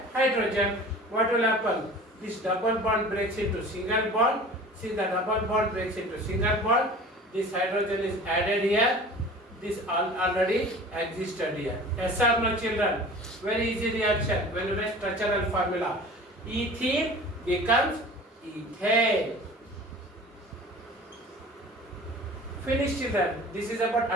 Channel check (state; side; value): normal; both; correlation 0.41